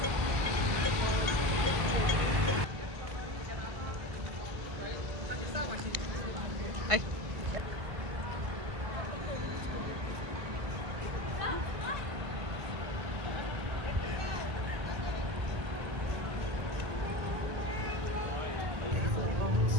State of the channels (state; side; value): late; left; 1.5 ms